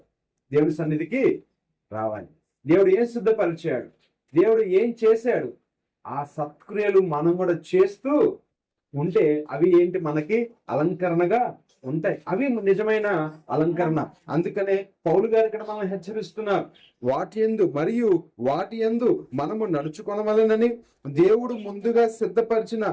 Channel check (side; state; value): both; identical; correlation 1.00